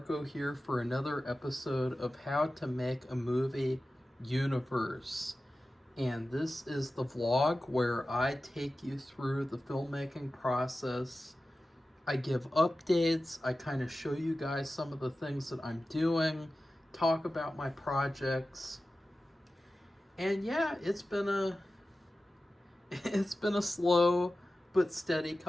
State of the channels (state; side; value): normal; both; correlation 0.94